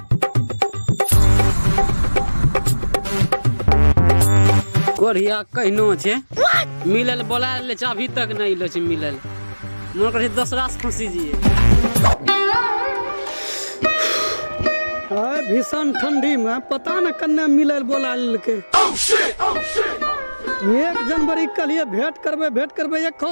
कोरिया कहनो छे मिलल बोला ले अभी तक नहीं लो छे मिलल मन करे दूसरा से फंसी जिए भीषण ठंडी में पता न कन्ने मिलल बोला लेके 1 जनवरी के लिए भेंट करबे 1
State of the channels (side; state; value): both; inverted; correlation -1.00